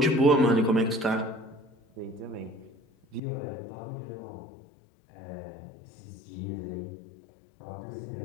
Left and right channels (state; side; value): drops out; right; at 3.2 s